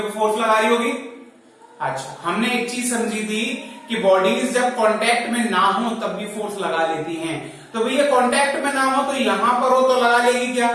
को फोर्स लगा रही होगी। अच्छा, हमने एक चीज समझी थी कि बॉडीज जब कांटेक्ट में ना हो तब भी फोर्स लगा लेती हैं। तो भैया कांटेक्ट में ना हो तो यहां पर हो तो लगा लेगी क्या,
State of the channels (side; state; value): both; identical; correlation 1.00